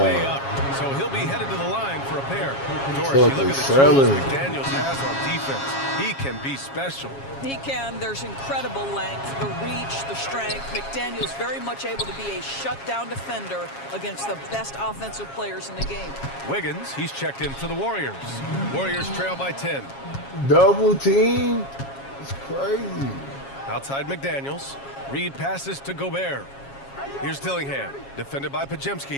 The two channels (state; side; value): late; right; 7.3 ms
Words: way up. So he'll be headed to the line for a pair. Doris, you look at the tools McDaniels has on defense. He can be special. He can. There's incredible length, the reach, the strength. McDaniel's very much able to be a shutdown defender against the best offensive players in the game. Wiggins, he's checked in for the Warriors. Warriors trail by 10. Double team? It's crazy. Outside McDaniels. Reed passes to Gobert. Here's Dillingham, defended by